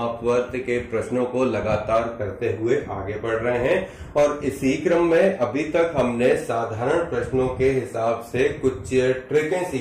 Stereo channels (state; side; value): identical; both; correlation 1.00